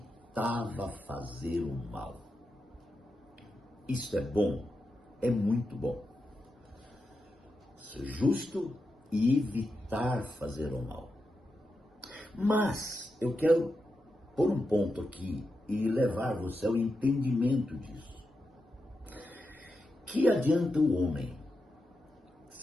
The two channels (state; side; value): normal; both; correlation 0.88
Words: fazer o mal. Isso é bom? É muito bom. Ser justo e evitar fazer o mal. Mas eu quero pôr um ponto aqui e levar você ao entendimento disso. Que adianta o homem